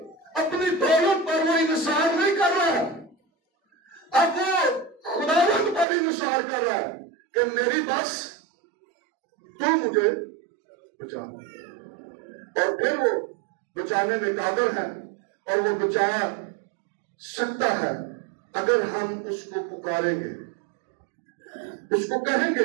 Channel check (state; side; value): drops out; left; at 5.9 s